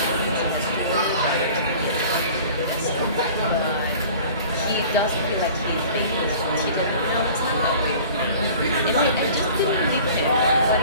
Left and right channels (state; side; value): inverted; both; correlation -0.45